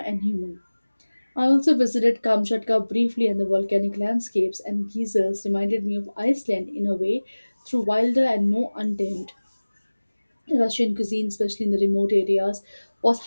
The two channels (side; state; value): both; inverted; correlation -1.00